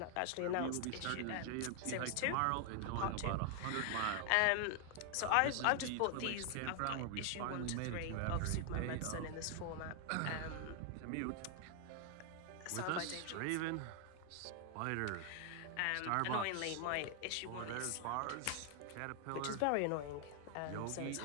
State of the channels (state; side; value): different; both; correlation 0.00